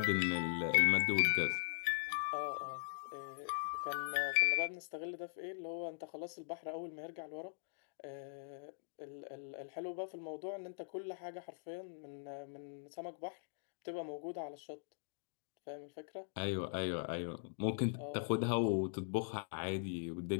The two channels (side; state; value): right; silent; digital silence